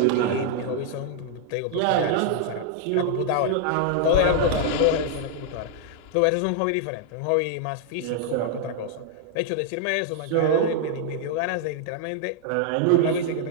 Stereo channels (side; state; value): both; different; correlation 0.00